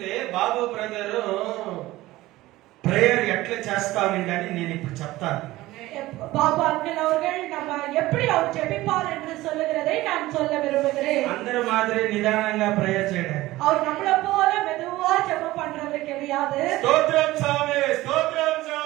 బాబు బ్రదర్ ప్రేయర్ ఎట్లా చేస్తామండి అని నేను ఇప్పుడు చెప్తాను. பாபு அங்கிள் அவர்கள் நம்ம எப்படி அவர் ஜெபிப்பார் என்று சொல்லுகிறதை நான் சொல்ல விரும்புகிறேன். అందరూ మాదిరి నిదానంగా ప్రేయర్ చేయడం. அவர் நம்மள போல மெதுவா ஜெபம் பண்றது கிடையாது. స్తోత్రం స్వామి, స్తోత్రం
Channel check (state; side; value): quieter; left; 17.6 dB